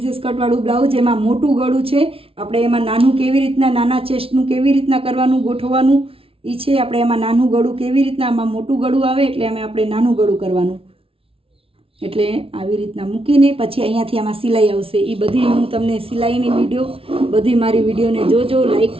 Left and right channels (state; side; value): late; left; 0.26 ms